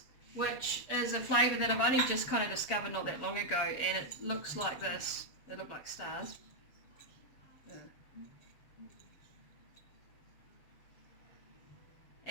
which is a flavour that I've only just kind of discovered not that long ago, and it looks like this. They look like stars. Yeah.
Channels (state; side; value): late; right; 7.3 ms